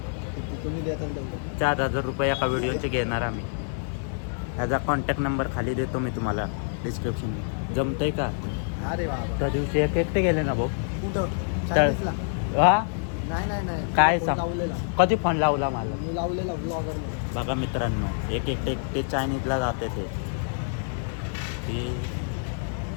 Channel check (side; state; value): right; silent; digital silence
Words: 4000 रुपये एका व्हिडिओचे घेणार आम्ही. ह्याचा कॉन्टॅक्ट नंबर खाली देतो मी तुम्हाला डिस्क्रिप्शन. जमतंय का? अरे बाबा त्या दिवशी एकटे गेले ना भाऊ. कुठं? हा नाही काय सांग, कधी फोन लावला मला? मी लावलेला ब्लॉगर. बघा मित्रांनो एकटे चायनीजला जाते ते.